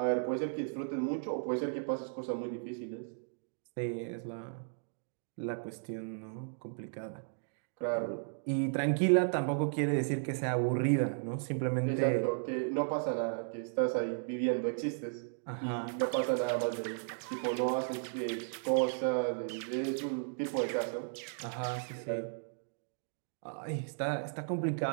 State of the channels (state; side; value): silent; left; digital silence